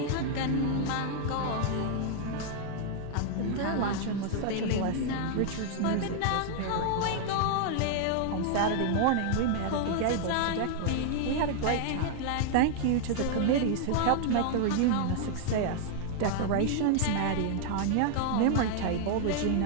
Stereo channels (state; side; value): different; both; correlation -0.01